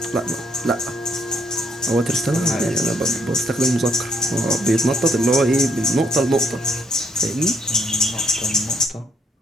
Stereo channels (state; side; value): normal; both; correlation 0.70